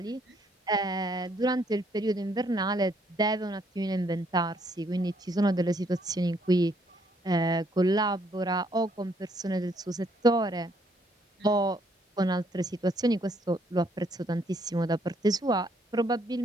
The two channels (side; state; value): both; normal; correlation 0.69